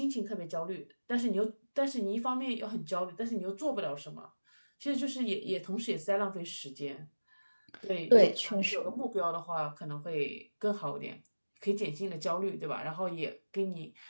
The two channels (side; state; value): both; inverted; correlation -1.00